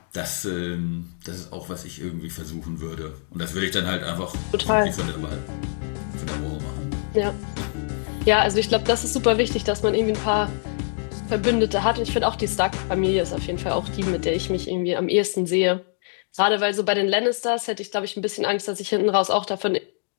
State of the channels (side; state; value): right; silent; digital silence